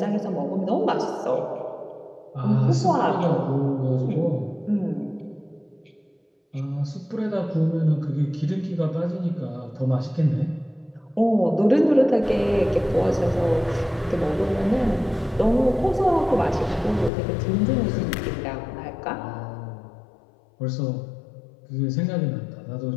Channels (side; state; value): right; drops out; at 17.1 s